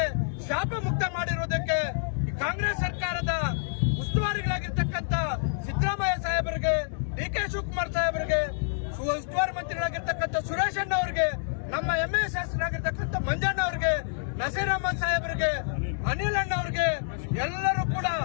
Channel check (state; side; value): silent; right; digital silence